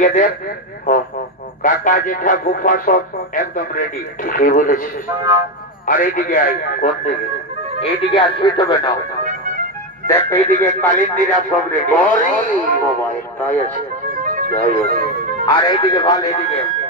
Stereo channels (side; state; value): both; normal; correlation 0.10